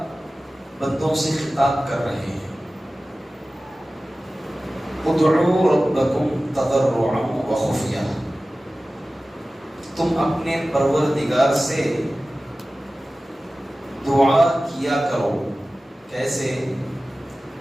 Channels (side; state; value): both; normal; correlation 0.96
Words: بندوں سے خطاب کر رہے ہیں. ادعوا ربکم تضرعا وخفیہ، تم اپنے پروردگار سے دعا کیا کرو. کیسے؟